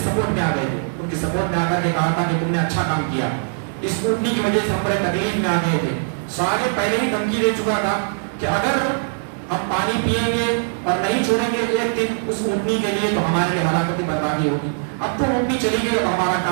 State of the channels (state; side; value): silent; left; 65 dB below the other